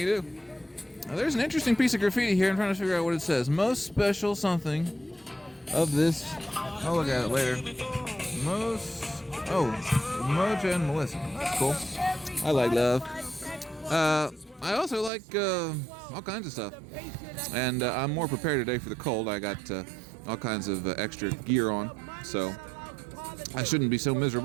do. There's an interesting piece of graffiti here. I'm trying to figure out what it says. Most special something of this. I'll look at it later. Moja and Melissa. That's cool. I like love. I also like all kinds of stuff. And I'm more prepared today for the cold. I got all kinds of extra gear on, so I shouldn't be so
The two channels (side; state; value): left; drops out; at 15.1 s